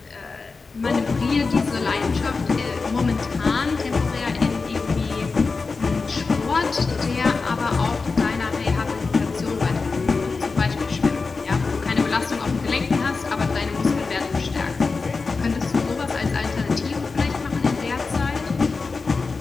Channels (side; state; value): right; quieter; 4.3 dB